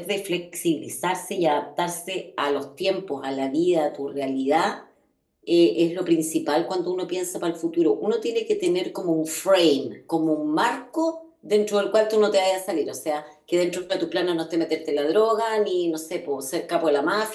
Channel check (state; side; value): identical; both; correlation 1.00